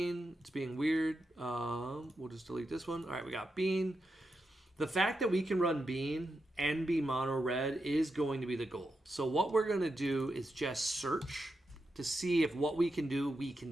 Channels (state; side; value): normal; both; correlation 0.87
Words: It's being weird. We'll just delete this one. All right, we got Bean. The fact that we can run Bean and be mono red is going to be the goal. So what we're going to do is just search to see if what we can do, we can